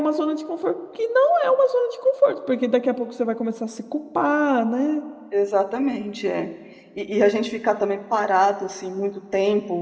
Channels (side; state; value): both; identical; correlation 1.00